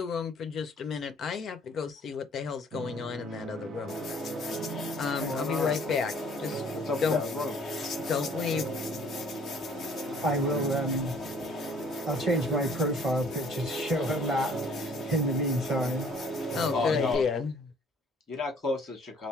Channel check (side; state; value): both; normal; correlation 0.57